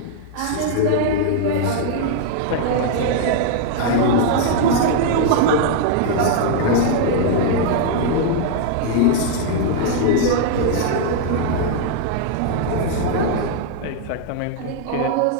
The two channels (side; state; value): both; different; correlation 0.00